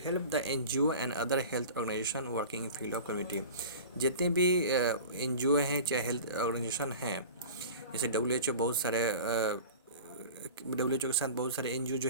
the NGO and other health organisation working in field of community, जितने भी NGO हैं चाहे हेल्थ ऑर्गेनाइजेशन हैं, जैसे WHO, बहुत सारे WHO के साथ बहुत सारे NGO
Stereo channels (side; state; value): both; inverted; correlation -0.37